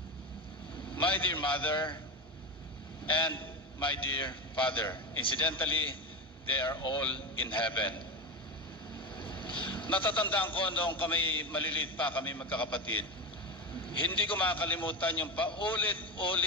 my dear mother, and my dear father. Incidentally, they are all in heaven. Natatandaan ko noong kami maliliit pa, kami magkakapatid, hindi ko makakalimutan yung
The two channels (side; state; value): both; normal; correlation 0.20